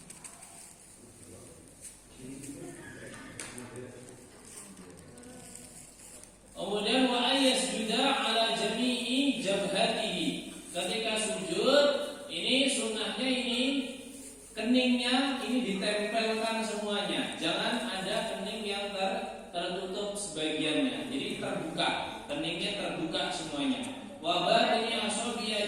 Kemudian wa ayyasjuda ala jami'i jabhatihi. Ketika sujud ini sunnahnya ini keningnya ini ditempelkan semuanya. Jangan ada kening yang tertutup sebagiannya. Jadi terbuka, keningnya terbuka semuanya. Wa badani asabi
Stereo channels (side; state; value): both; identical; correlation 1.00